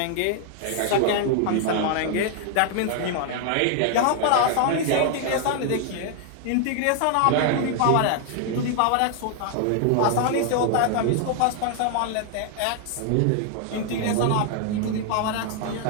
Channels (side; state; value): both; different; correlation 0.00